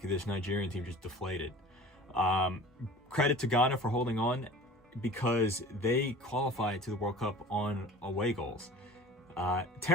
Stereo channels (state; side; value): normal; both; correlation 0.41